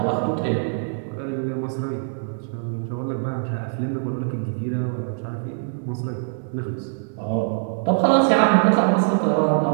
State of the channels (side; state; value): left; silent; digital silence